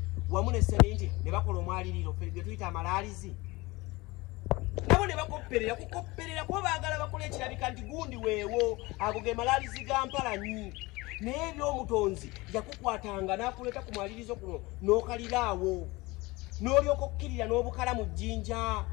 wamu ne seminti ne bakola omwaliriro ge tuyita amalaalizi nabo ne bakopperera kukopperera kuba baagala bakola ekirabika nti gundi weewo ago ge malaalizi ga Mpalanyi naye eby'omutonzi yakukwatanga n'akuleeta ku mwalirizo kuno n'okaliraawo n'olyoka okukkirira n'obukala mu jjinja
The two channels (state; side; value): quieter; right; 22.3 dB